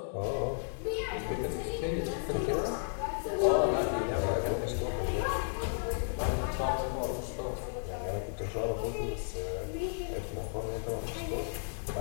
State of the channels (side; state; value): right; silent; digital silence